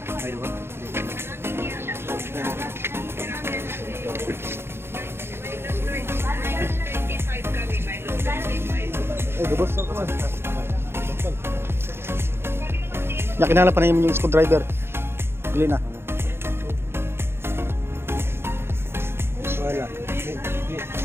Ayun ba? Lubos ako man. Kinala pa na yung screwdriver. Bili na. Wala.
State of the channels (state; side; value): late; left; 0.12 ms